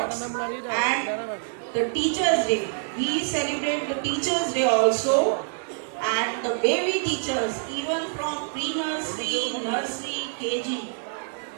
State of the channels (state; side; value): silent; left; digital silence